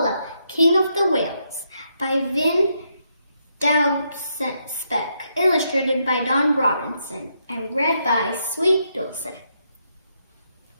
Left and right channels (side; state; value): both; inverted; correlation -0.79